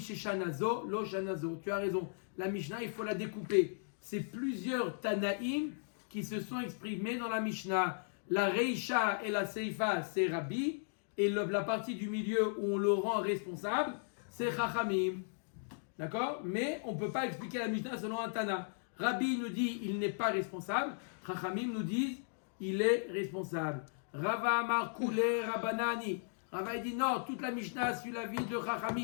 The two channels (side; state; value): right; silent; digital silence